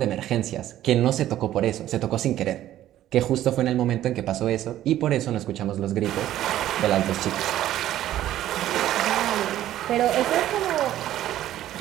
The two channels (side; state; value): left; quieter; 13.0 dB